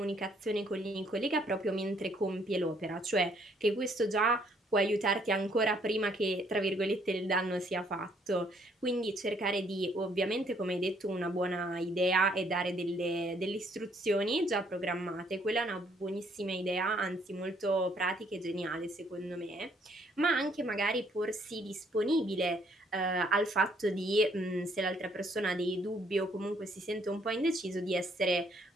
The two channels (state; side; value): normal; both; correlation 0.66